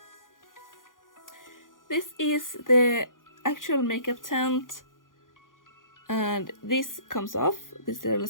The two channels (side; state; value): right; late; 0.89 ms